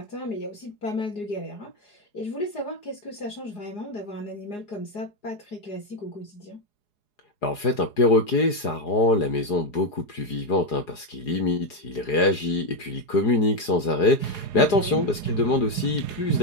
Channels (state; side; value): late; right; 4.8 ms